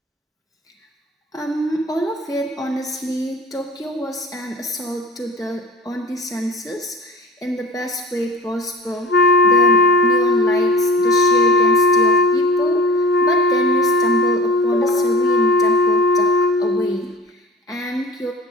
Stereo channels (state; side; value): normal; both; correlation 0.39